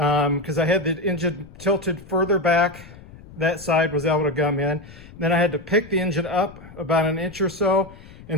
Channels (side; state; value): left; noise; rumble, 19 dB below the sound